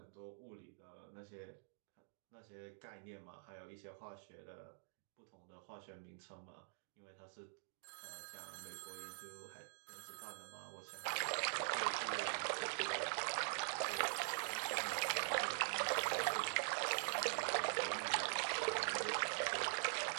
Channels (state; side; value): silent; left; digital silence